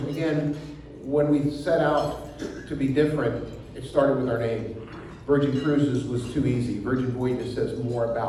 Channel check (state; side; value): identical; both; correlation 1.00